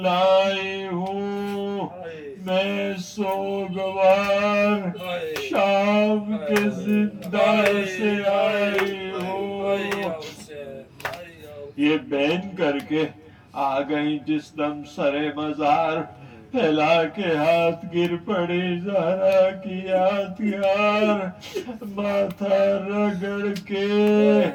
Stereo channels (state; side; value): identical; both; correlation 1.00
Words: لائی ہوں میں، سوگوار شام کے زندان سے آئی ہوں۔ یہ بین کر کے آ گئی جس دم سرے مزار، پھیلا کے ہاتھ گر پڑی زہرا کی یادگار، ماتھا رگڑ کے